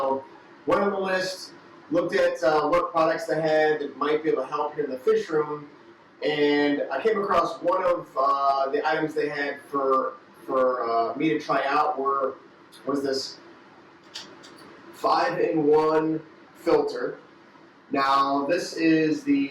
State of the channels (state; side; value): identical; both; correlation 1.00